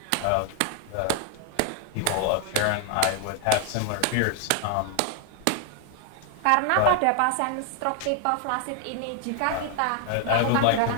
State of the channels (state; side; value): different; both; correlation 0.00